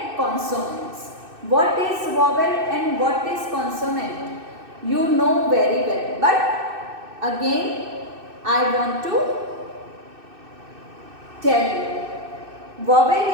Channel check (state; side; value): late; left; 2.6 ms